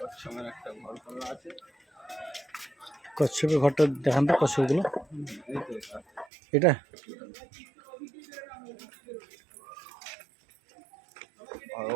একটা ঘর করা আছে। কচ্ছপের ঘরটা দেখান তো, কচ্ছপগুলো এই তো এটা আর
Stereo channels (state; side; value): drops out; left; at 6.2 s